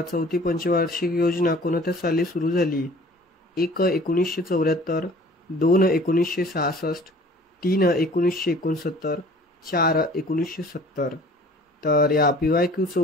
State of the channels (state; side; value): normal; both; correlation 0.49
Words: चौथी पंचवार्षिक योजना कोणत्या साली सुरू झाली? 1 1974, 2 1966, 3 1969, 4 1970. तर या PYQचं